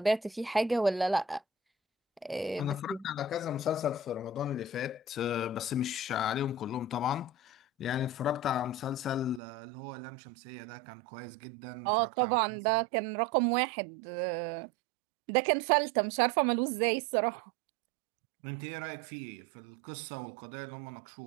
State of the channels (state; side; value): drops out; left; at 9.4 s